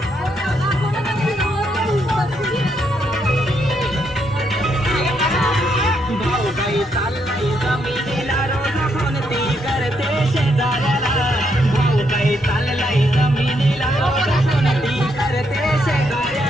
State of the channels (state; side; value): normal; both; correlation 0.77